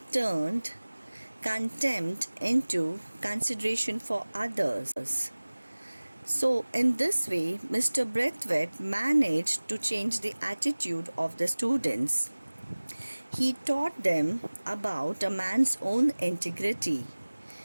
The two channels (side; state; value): both; inverted; correlation -1.00